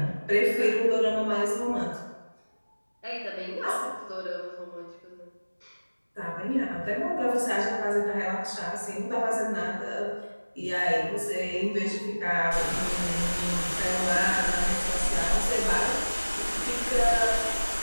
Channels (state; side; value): inverted; both; correlation -1.00